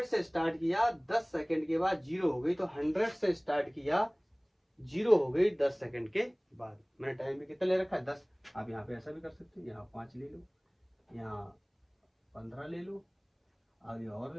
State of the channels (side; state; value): both; identical; correlation 1.00